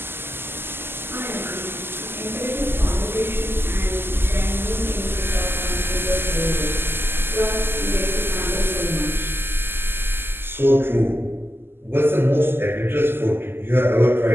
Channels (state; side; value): late; left; 0.11 ms